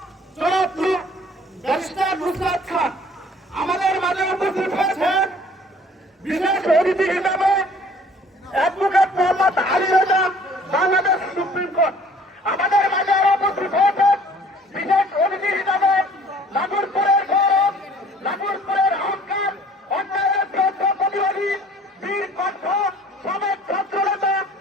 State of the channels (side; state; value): both; normal; correlation 0.53